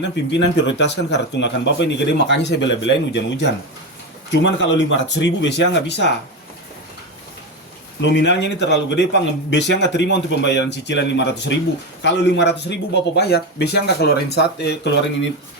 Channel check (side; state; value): both; normal; correlation 0.16